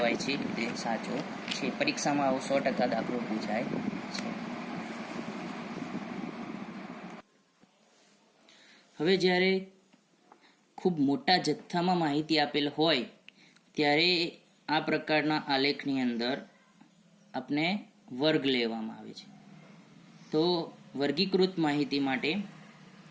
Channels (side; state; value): both; identical; correlation 1.00